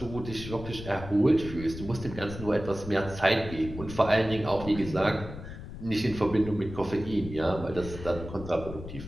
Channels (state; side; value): noise; left; rumble, 11 dB below the sound